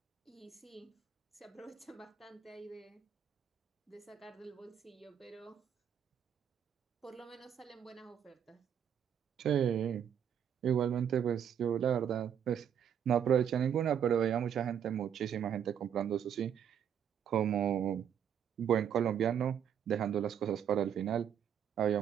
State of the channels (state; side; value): quieter; left; 8.8 dB